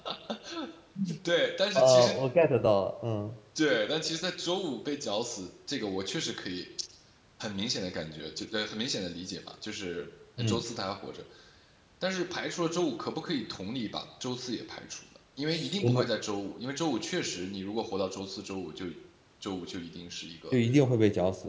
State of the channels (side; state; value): both; identical; correlation 1.00